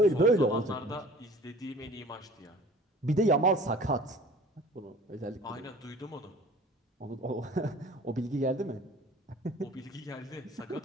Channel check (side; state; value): both; normal; correlation 0.47